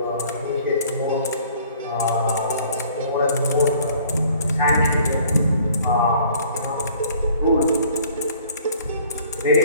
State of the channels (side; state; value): both; inverted; correlation -0.55